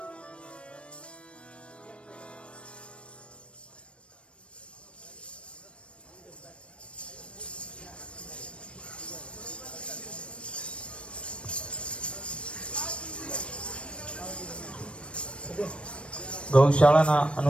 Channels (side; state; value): right; late; 0.059 ms